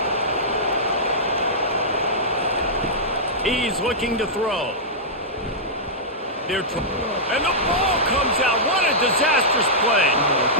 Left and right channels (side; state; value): both; normal; correlation -0.12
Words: He's looking to throw. And the ball comes out. What a disastrous play.